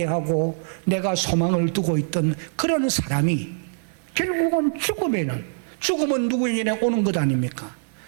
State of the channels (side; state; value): left; silent; 63 dB below the other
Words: 내가 소망을 두고 있던 그런 사람이 결국은 죽음은 누구에게 오는 것 아닙니까?